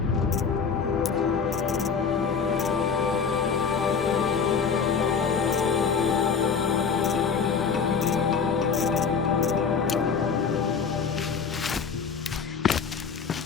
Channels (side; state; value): right; quieter; 6.0 dB